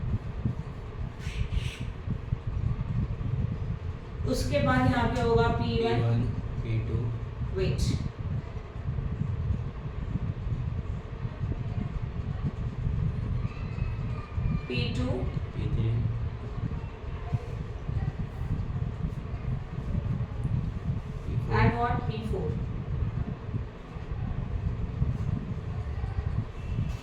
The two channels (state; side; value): identical; both; correlation 1.00